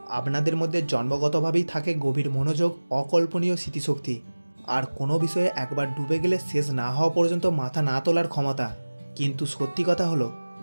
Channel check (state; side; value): inverted; both; correlation -1.00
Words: আপনাদের মধ্যে জন্মগতভাবেই থাকে গভীর মনোযোগ, অকল্পনীয় স্মৃতিশক্তি, আর কোনো বিষয়ে একবার ডুবে গেলে শেষ না হওয়া পর্যন্ত মাথা না তোলার ক্ষমতা। কিন্তু সত্যি কথা হলো,